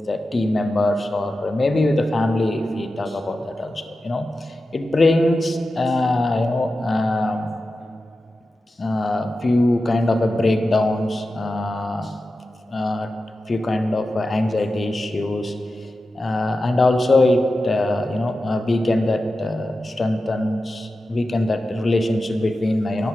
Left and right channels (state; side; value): normal; both; correlation 0.92